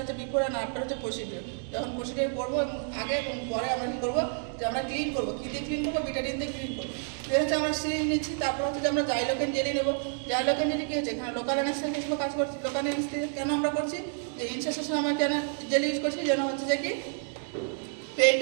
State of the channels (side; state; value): left; silent; 56 dB below the other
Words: হচ্ছে বিফোর আর আফটার হচ্ছে প্রসিডিউর। যখন প্রসিডিউর করবো এবং আগে এবং পরে আমরা কী করবো, যে আমরা ক্লিন করবো। কী দিয়ে ক্লিন করবো, ভিটামিন দিয়ে ক্লিন করবো। এর হচ্ছে আমরা সিরিঞ্জ নিচ্ছি, তারপর হচ্ছে যে আমরা জাইলোকেন জেলি নেবো। জাইলোকেন জেলি কী হচ্ছে, এখানে লোকাল অ্যানেস্থেসিয়া হিসেবে কাজ করছি। লোকাল অ্যানেস্থেসিয়া কেন আমরা করছি, যে ইনসেশন আমরা কেন জেলি ইউজ করছি, যেন হচ্ছে যে কি